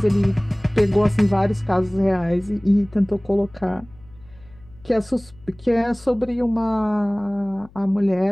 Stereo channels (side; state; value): left; noise; hum, 25 dB below the sound